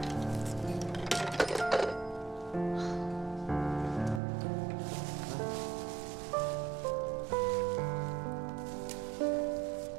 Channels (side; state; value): left; drops out; at 4.2 s